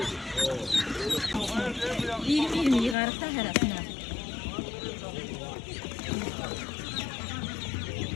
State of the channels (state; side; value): drops out; right; at 3.0 s